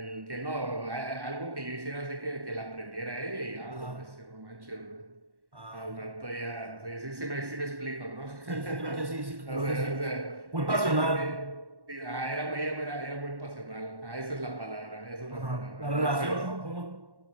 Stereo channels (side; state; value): left; late; 1.1 ms